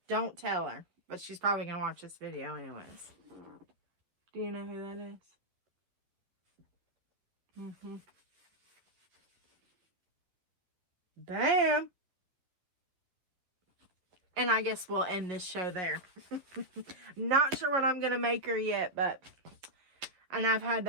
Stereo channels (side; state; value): left; late; 11 ms